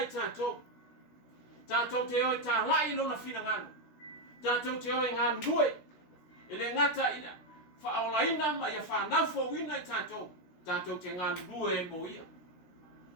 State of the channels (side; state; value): right; late; 16 ms